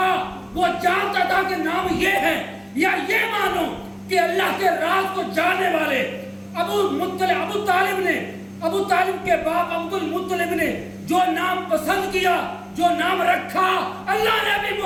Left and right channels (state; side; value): identical; both; correlation 1.00